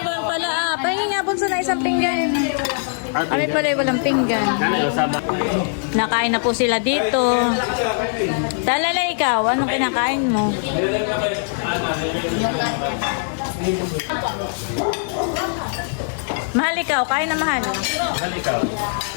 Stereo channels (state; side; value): silent; right; 65 dB below the other